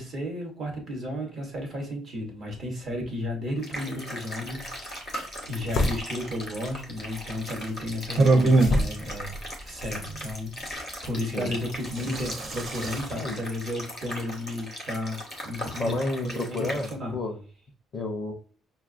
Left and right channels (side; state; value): both; normal; correlation 0.76